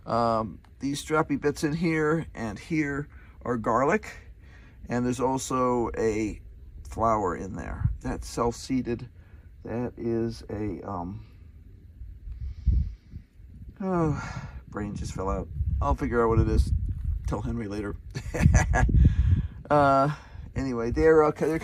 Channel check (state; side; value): identical; both; correlation 1.00